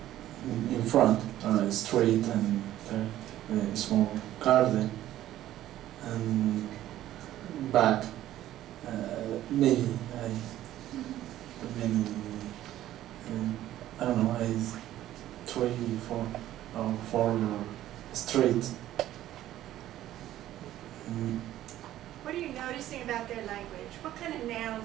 front a street and a small garden, and back maybe I don't know, 3, 4 or 4 streets. What are you noticing about their language? What kind of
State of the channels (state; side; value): quieter; left; 13.4 dB